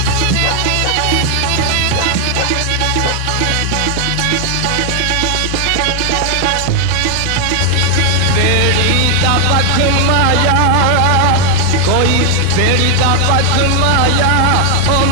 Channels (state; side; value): different; both; correlation 0.00